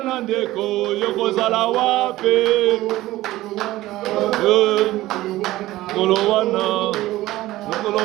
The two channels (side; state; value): left; quieter; 16.7 dB